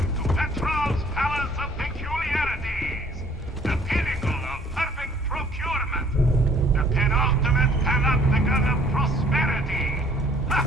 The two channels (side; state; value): both; normal; correlation 0.58